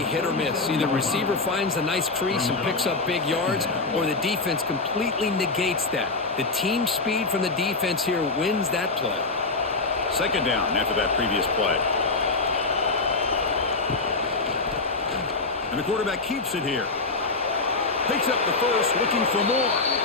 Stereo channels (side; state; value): right; quieter; 3.7 dB